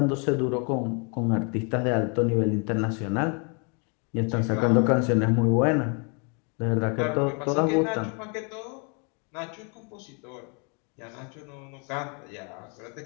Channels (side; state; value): right; quieter; 36.4 dB